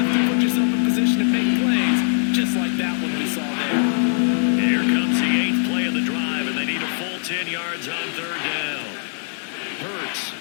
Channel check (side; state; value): right; silent; digital silence